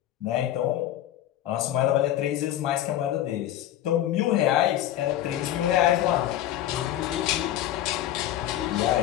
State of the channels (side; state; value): right; quieter; 12.5 dB